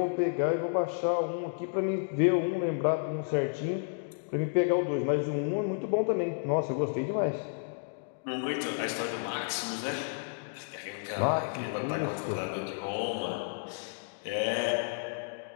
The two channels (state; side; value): silent; right; digital silence